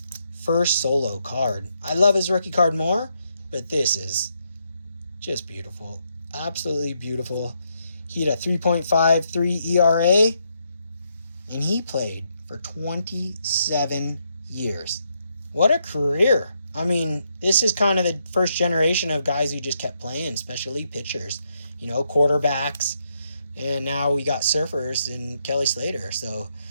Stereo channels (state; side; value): inverted; both; correlation -0.78